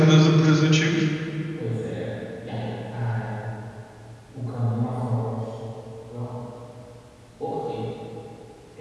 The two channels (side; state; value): both; identical; correlation 1.00